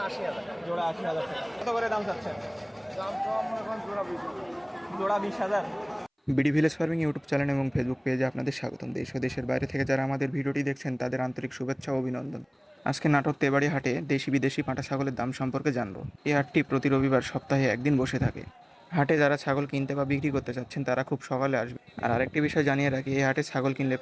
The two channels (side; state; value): both; identical; correlation 1.00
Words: 80,000। জোড়া 80,000 টাকা। কত করে দাম চাচ্ছেন? দাম তো আমরা এখন জোড়া 20। জোড়া 20,000। BD village farming YouTube channel এবং ফেসবুক পেজে আপনাদের স্বাগতম। দেশ ও দেশের বাইরে থেকে যারা আমাদের ভিডিওটি দেখছেন তাদের আন্তরিক শুভেচ্ছা ও অভিনন্দন। আজকে নাটোর তেবাড়ি হাটে দেশি বিদেশি পাঁঠা ছাগলের দাম সম্পর্কে জানবো। এই হাটটি প্রতি রবিবার সপ্তাহে একদিন বসে থাকে। হাটে যারা ছাগল কিনতে বা বিক্রি করতে চাচ্ছেন তারা খুব সকালে আসবে। আর আরেকটি বিষয় জানিয়ে রাখি, এই হাটে ছাগল কিনলে